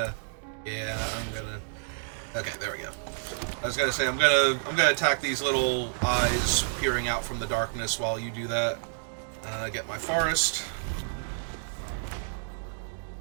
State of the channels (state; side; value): silent; left; digital silence